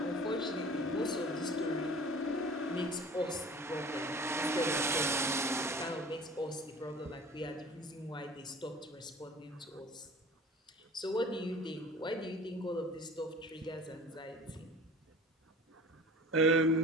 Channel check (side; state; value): both; normal; correlation 0.43